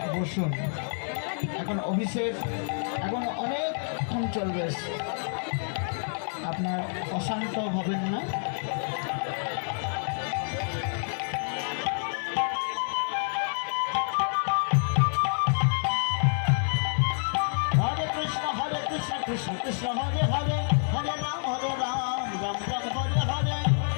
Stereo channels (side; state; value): right; silent; digital silence